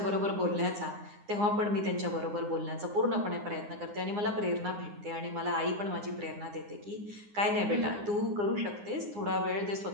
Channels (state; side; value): late; left; 9.8 ms